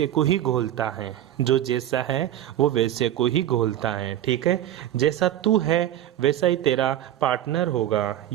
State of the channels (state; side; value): quieter; left; 12.2 dB